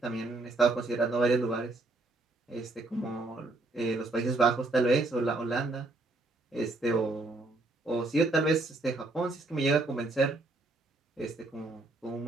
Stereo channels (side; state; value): left; quieter; 3.0 dB